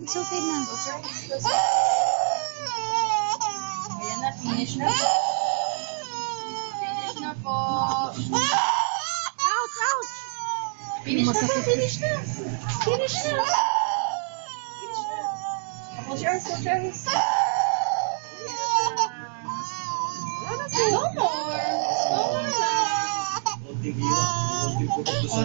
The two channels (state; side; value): silent; left; 57 dB below the other